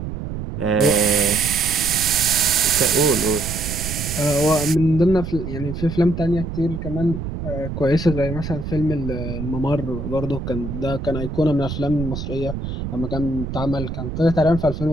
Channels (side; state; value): right; noise; rumble, 6 dB below the sound